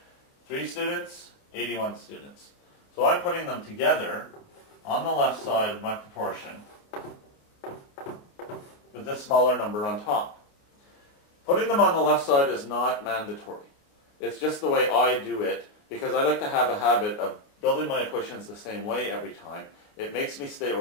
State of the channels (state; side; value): late; right; 28 ms